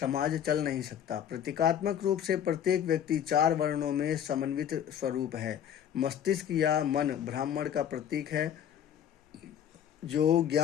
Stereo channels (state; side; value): quieter; right; 9.5 dB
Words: चल नहीं सकता। प्रतीकात्मक रूप से प्रत्येक व्यक्ति 4 वर्णों में समन्वित स्वरूप है। मस्तिष्क या मन ब्राह्मण का प्रतीक है, जो